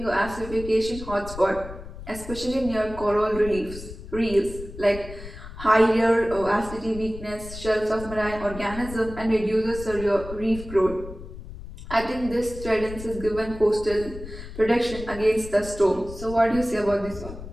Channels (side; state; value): left; noise; rumble, 12 dB below the sound